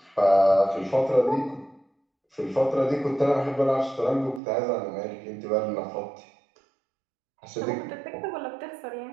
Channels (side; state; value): left; drops out; at 4.4 s